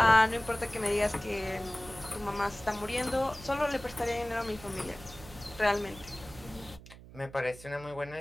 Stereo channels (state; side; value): noise; right; hum, 18 dB below the sound